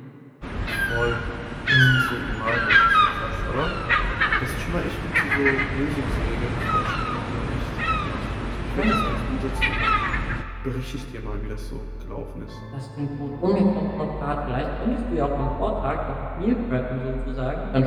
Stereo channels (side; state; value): both; identical; correlation 1.00